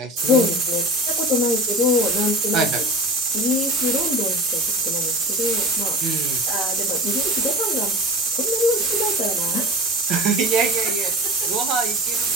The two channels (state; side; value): normal; both; correlation 0.34